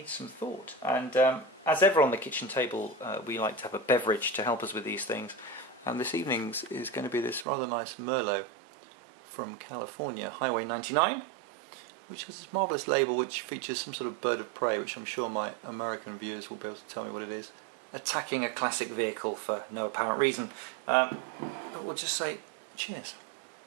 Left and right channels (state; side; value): drops out; left; at 7.5 s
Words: some thought. And as ever on the kitchen table, we like to have a beverage to help us with these things. And this evening's is going to be this rather nice Merlot from California, Highway 99, which has this marvellous label which features some sort of bird of prey, which I'm sure my American viewers will be able to tell me what it is, attacking a classic vehicle for no apparent reason. But we'll just say cheers.